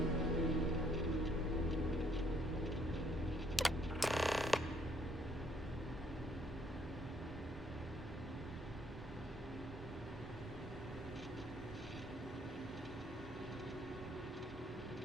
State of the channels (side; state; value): both; normal; correlation 0.67